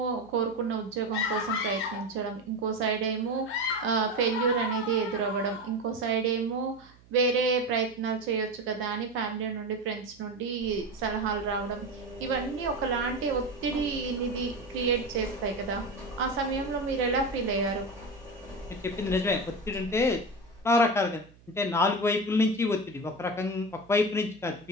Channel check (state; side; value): noise; right; hum, 26 dB below the sound